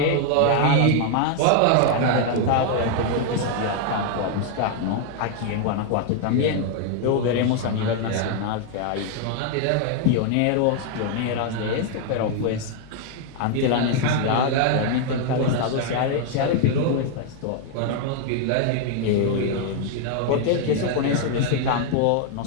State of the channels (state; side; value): different; both; correlation 0.00